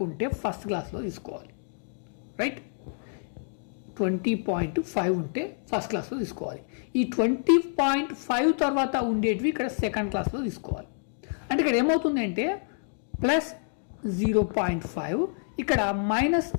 ఉంటే ఫస్ట్ క్లాస్లో తీసుకోవాలి, రైట్. 20.5 ఉంటే ఫస్ట్ క్లాస్లో తీసుకోవాలి. ఈ 20.5 తర్వాత ఉండేటివి ఇక్కడ సెకండ్ క్లాస్లో తీసుకోవాలి. అంటే ఇక్కడ ఏమవుతుంది అంటే ప్లస్ 0.5 ఇక్కడ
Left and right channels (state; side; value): silent; right; digital silence